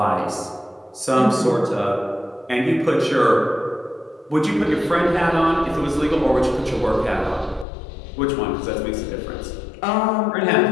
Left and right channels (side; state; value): right; drops out; at 7.7 s